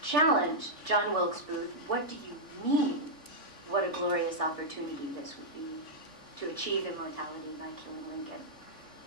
challenged John Wilkes Booth, "What do you mean? What a glorious opportunity this would be to achieve immortality by killing Lincoln."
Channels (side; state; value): right; late; 3.5 ms